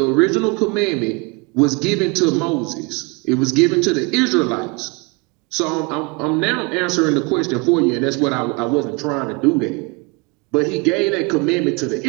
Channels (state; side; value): quieter; left; 29.1 dB